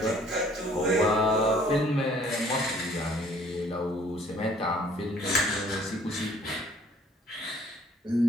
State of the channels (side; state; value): both; normal; correlation 0.57